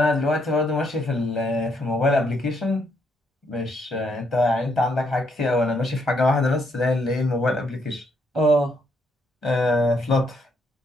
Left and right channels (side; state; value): both; normal; correlation 0.74